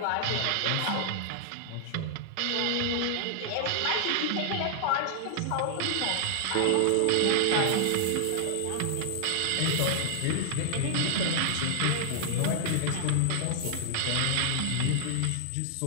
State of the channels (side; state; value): both; different; correlation -0.01